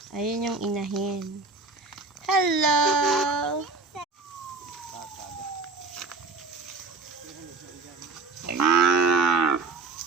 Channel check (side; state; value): left; quieter; 4.0 dB